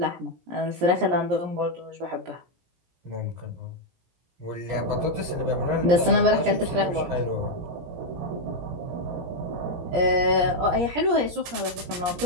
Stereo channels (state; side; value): late; left; 17 ms